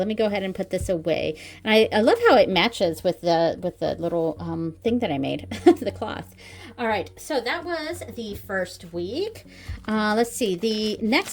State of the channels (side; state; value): both; identical; correlation 1.00